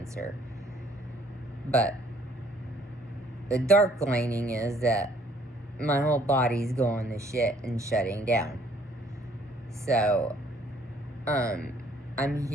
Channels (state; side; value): normal; both; correlation 0.62